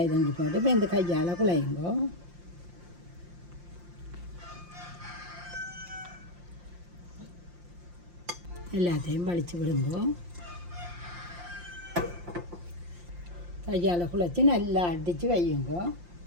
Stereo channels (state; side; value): late; left; 5.7 ms